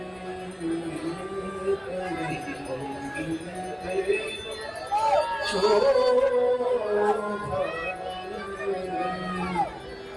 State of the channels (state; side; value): identical; both; correlation 1.00